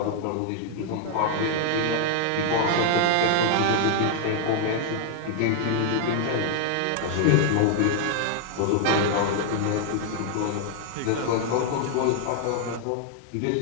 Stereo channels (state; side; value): different; both; correlation 0.00